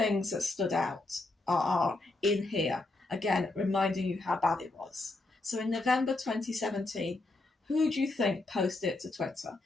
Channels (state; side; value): quieter; right; 3.1 dB